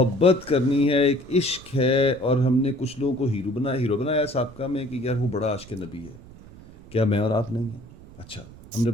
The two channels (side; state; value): right; noise; rumble, 20 dB below the sound